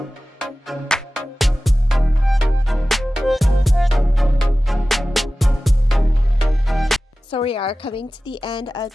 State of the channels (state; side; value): normal; both; correlation 0.96